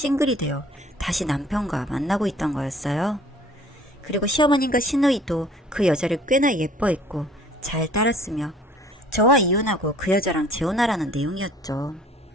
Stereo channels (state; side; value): normal; both; correlation 0.53